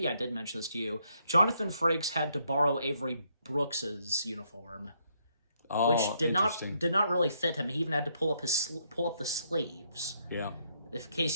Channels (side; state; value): both; inverted; correlation -0.73